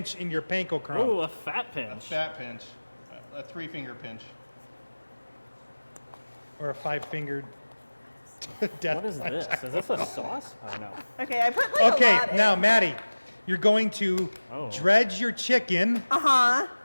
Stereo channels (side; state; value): both; inverted; correlation -1.00